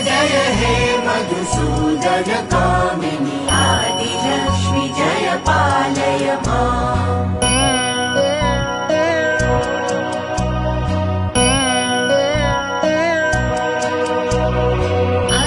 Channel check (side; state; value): both; identical; correlation 1.00